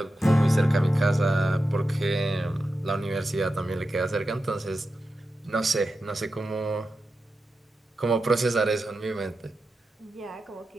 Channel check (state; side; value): normal; both; correlation 0.90